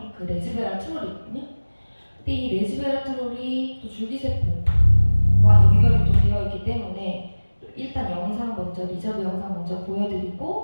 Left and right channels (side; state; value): both; inverted; correlation -1.00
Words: 그 레스베라트롤이거든요. 근데 이 레스베라트롤이 또 줄기세포와 연결이 또 되어 있기 때문에 일단 영상 먼저 리저브 영상 먼저